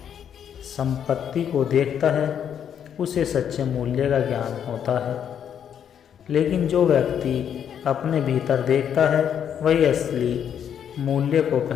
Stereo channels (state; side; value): quieter; right; 8.7 dB